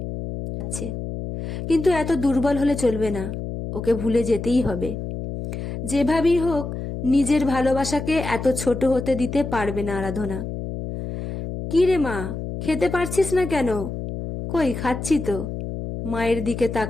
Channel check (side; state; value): left; noise; hum, 6 dB below the sound